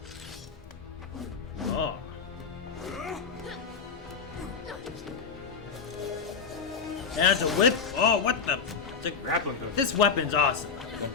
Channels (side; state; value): right; quieter; 5.7 dB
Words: Oh. That's a whip? Oh, what the? It's a grappling hook. This weapon's awesome.